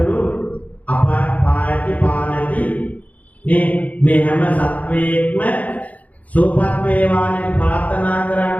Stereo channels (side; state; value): right; late; 0.073 ms